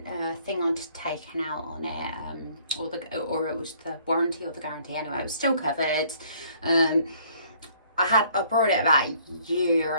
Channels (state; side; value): inverted; both; correlation -0.60